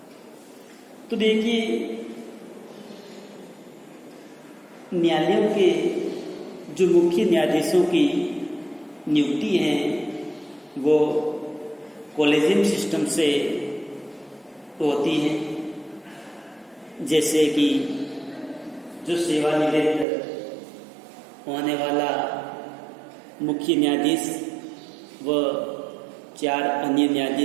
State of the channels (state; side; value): drops out; left; at 20.1 s